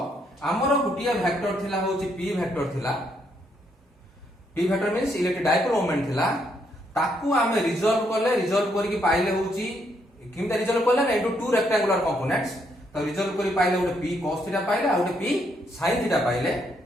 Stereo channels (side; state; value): both; normal; correlation 0.74